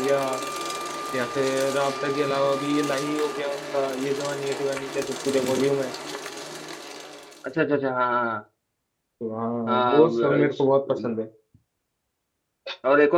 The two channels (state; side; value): identical; both; correlation 1.00